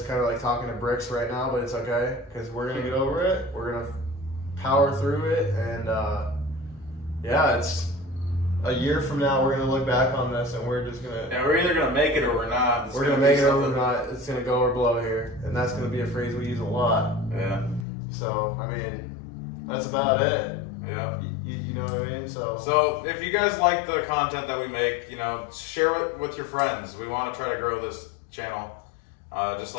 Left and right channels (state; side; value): drops out; right; at 17.9 s